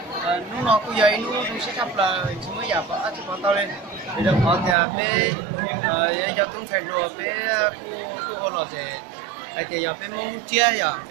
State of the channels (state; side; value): drops out; left; at 4.8 s